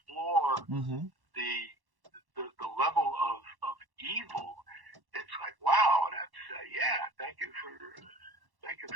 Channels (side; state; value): left; late; 1.1 ms